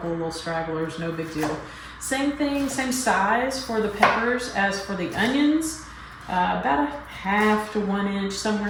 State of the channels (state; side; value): identical; both; correlation 1.00